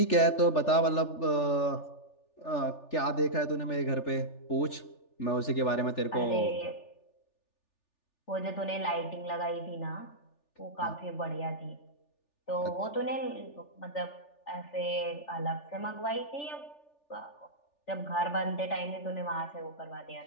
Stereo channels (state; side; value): late; right; 3.4 ms